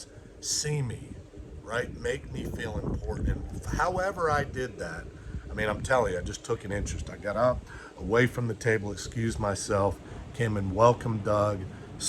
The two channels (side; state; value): both; identical; correlation 1.00